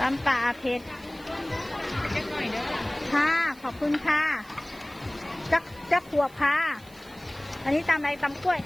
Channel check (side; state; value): right; noise; hiss, 25 dB below the sound